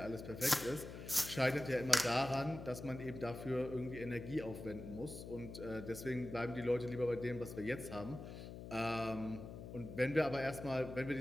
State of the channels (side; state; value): left; noise; hum, 10 dB below the sound